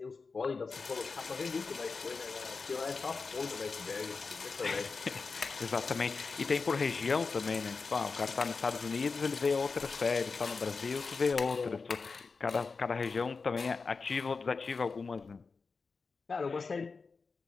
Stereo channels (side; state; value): right; quieter; 4.6 dB